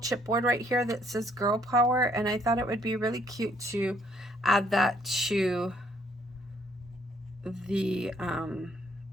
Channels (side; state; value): both; normal; correlation 0.66